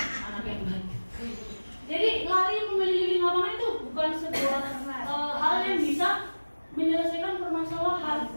anak yang baik. Jadi lari mengelilingi lapangan itu bukan sebuah hal yang bisa menyelesaikan permasalahan.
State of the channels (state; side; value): inverted; both; correlation -1.00